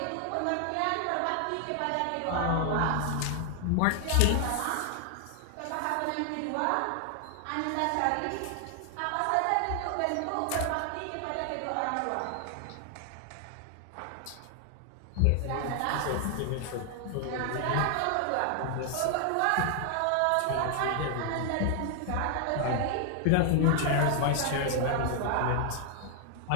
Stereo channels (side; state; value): both; different; correlation 0.00